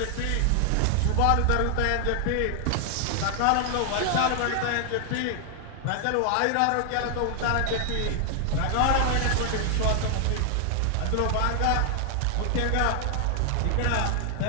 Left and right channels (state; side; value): different; both; correlation 0.00